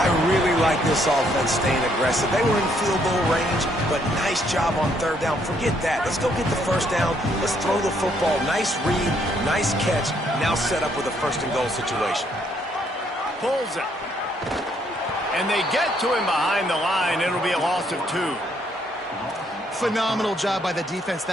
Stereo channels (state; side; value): normal; both; correlation 0.70